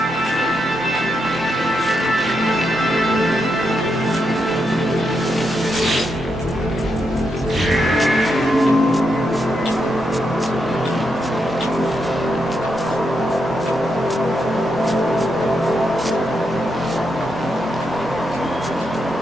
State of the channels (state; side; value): normal; both; correlation 0.82